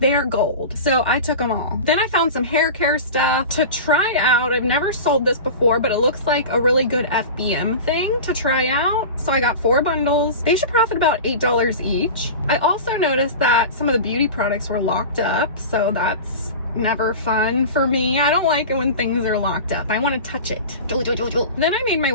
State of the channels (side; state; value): both; inverted; correlation -0.31